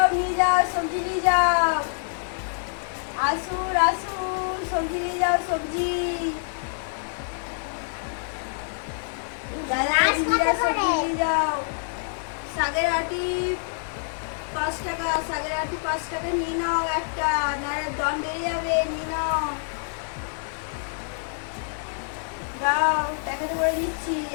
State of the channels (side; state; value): right; silent; digital silence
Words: যাও সবজি নিয়ে যাও। আসুন সবজি নিয়ে যাও, সবজি দাদা দিদিরা সবজি নিয়ে যাও। শাকের আটি 5 টাকা, শাকের আটি 5 টাকা নিয়ে নাও একটা, নাহলে দাম বেড়ে যাবে। নিয়ে নাও, দাও প্যাকেটে করে দিচ্ছি।